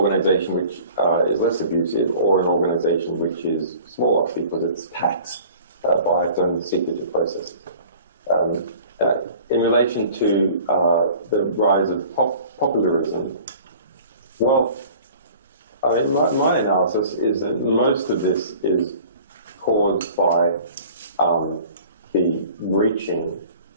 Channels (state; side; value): inverted; both; correlation -0.47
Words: which is less abusive or an organization which is smaller because it's taxed by its own secretive processes. In relation to the rise of populism, well, my analysis is that most of this is caused by the reaching